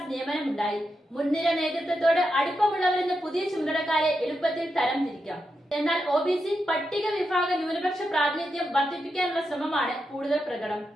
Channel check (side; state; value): both; normal; correlation 0.86